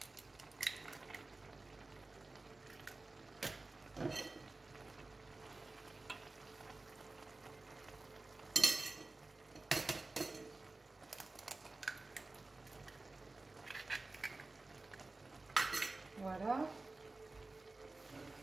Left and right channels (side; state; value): left; quieter; 3.2 dB